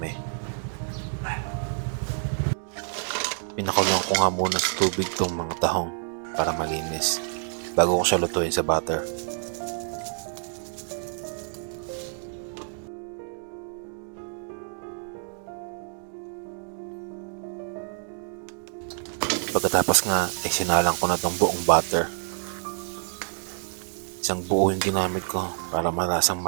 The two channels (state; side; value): silent; left; digital silence